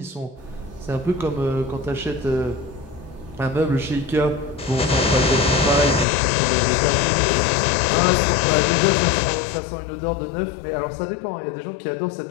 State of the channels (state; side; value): drops out; right; at 6.1 s